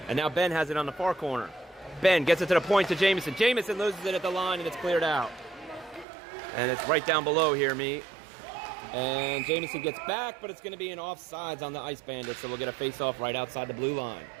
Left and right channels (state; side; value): drops out; left; at 6.1 s